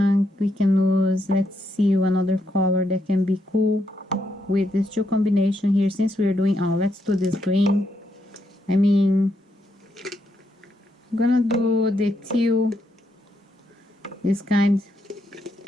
use, let's see, another color that can be cool with these two combination here. Since we're doing, let's do this green. I mean, I'm gonna do the teal, this kind.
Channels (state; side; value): normal; both; correlation 0.79